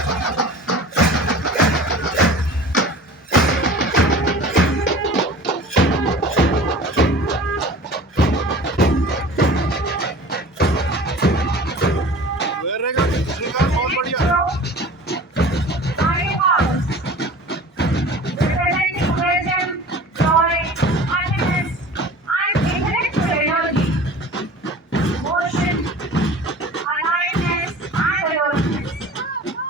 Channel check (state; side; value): normal; both; correlation 0.41